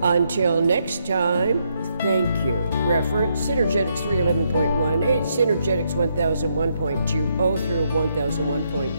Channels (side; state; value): both; inverted; correlation -0.76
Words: Until next time, thank you. Reference Synergetics 311.18, Synergetics 1001.20 through